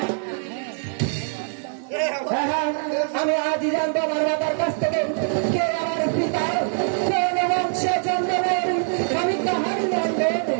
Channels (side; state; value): left; silent; 63 dB below the other